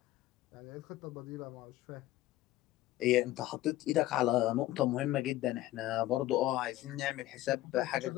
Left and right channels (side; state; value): right; quieter; 15.9 dB